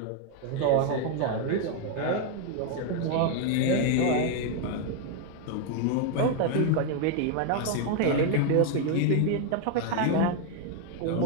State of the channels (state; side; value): different; both; correlation 0.00